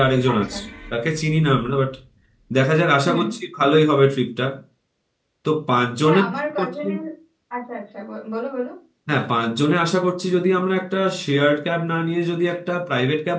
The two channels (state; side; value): identical; both; correlation 1.00